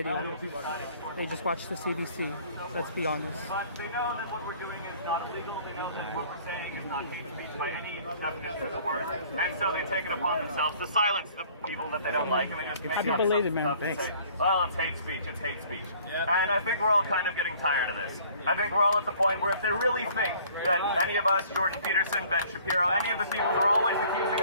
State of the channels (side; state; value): both; inverted; correlation -0.55